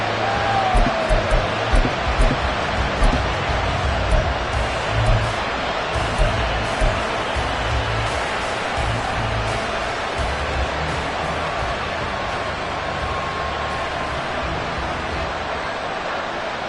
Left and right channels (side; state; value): both; identical; correlation 1.00